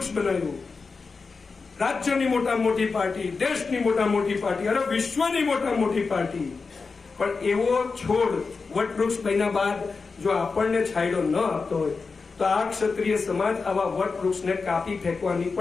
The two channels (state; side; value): quieter; right; 4.5 dB